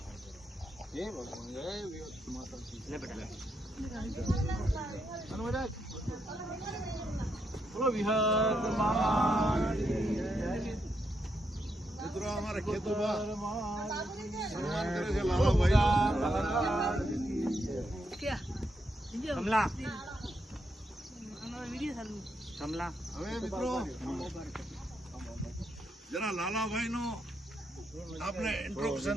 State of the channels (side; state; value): both; normal; correlation 0.80